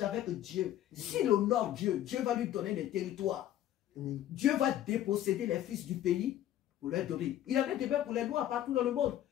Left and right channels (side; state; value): right; quieter; 12.3 dB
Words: avec Dieu, s'il honore Dieu, Dieu va lui donner les territoires. Dieu va déposséder les fils du pays pour leur donner. Il en est de même pour les Noirs partout dans le monde.